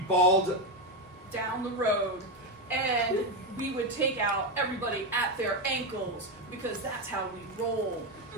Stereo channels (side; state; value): both; normal; correlation 0.09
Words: balled Down the road, and we would take out everybody at their ankles because that's how we roll.